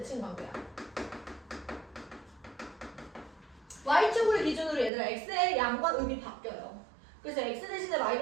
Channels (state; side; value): drops out; left; at 4.9 s